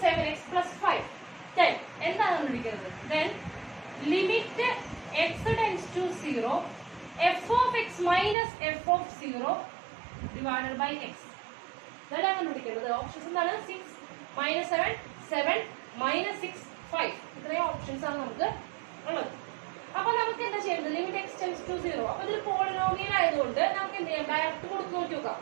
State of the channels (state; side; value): drops out; left; at 8.3 s